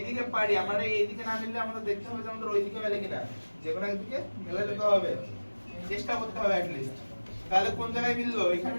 দিকে পারি আমরা এই দিকে না মিললে আমাদের দেখতে হবে যে আমাদের ওই দিকে মেলে কিনা, যে কোনো একদিকে মেলে যেতে হবে, চেষ্টা করতে হবে অ্যাট লিস্ট। তাহলে কোন জায়গায় মিললো? এখানে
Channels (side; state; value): both; inverted; correlation -1.00